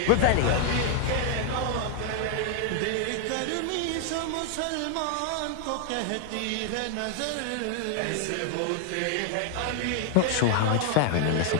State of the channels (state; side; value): different; both; correlation 0.00